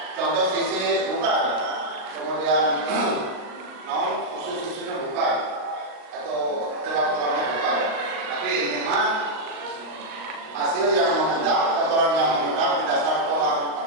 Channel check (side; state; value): left; late; 39 ms